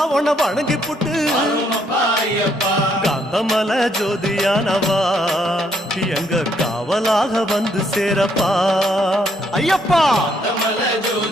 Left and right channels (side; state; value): both; normal; correlation 0.71